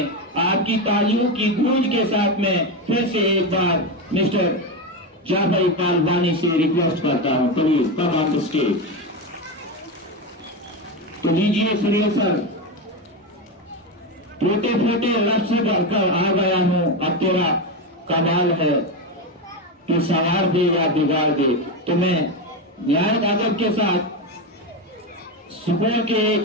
आपकी तालियों की गूंज के साथ में फिर से एक बार मिस्टर जाफर इकबाल वानी से रिक्वेस्ट करता हूँ, please come on the stage. तो लीजिए सुनील सर, टूटे फूटे लफ्ज़ से भरकर आ गया हूँ, अब तेरा कमाल है। कि संवार दे या बिगाड़ दे। तो मैं न्याय अदब के साथ सुकून के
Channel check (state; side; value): normal; both; correlation 0.14